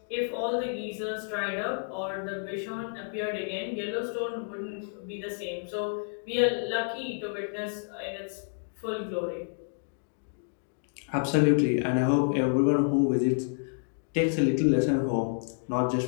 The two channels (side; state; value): right; silent; digital silence